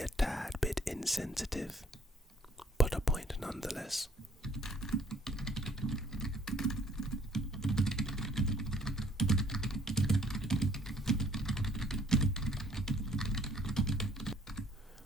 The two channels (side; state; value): both; normal; correlation 0.62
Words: tad bit insensitive, but a point nonetheless.